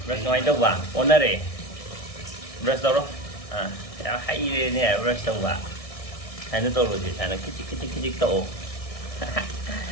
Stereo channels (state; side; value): late; right; 1.6 ms